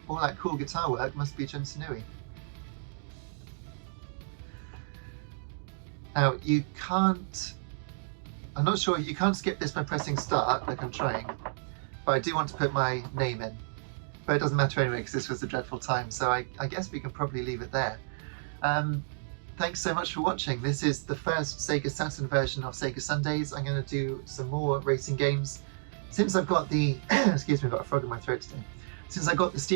all that cool guitar work must be Jun Sanui. Now you can't, I'm not sure, you can't skip this by pressing start like I'm trying, but I do want to put my name in. But it doesn't matter anyway because this was a dreadful time, so I guess we can probably leave it there. Thanks so much for watching. This is the first Sega Saturn version of Sega Sundays. I'm going to do some more racing games. Since I've got the, excuse me, I've got a frog in my throat today. Since I got the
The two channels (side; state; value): left; silent; digital silence